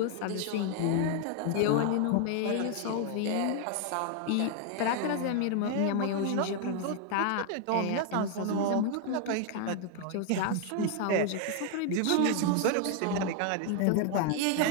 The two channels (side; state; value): both; different; correlation 0.00